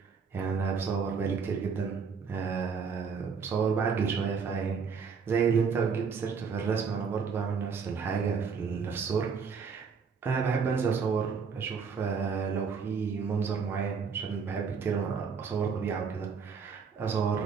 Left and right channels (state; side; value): quieter; left; 5.8 dB